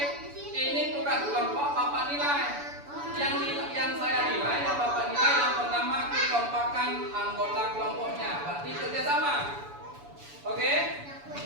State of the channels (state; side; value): late; left; 7.0 ms